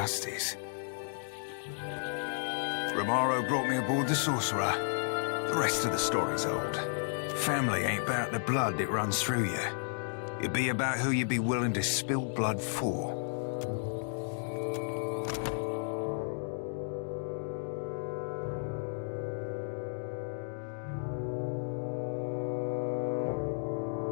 Romaro brought me aboard the sorcerer. The rest of the story's old. Family ain't about the blood that runs through you. It'd be about who you'd be willing to spill blood for.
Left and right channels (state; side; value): silent; right; digital silence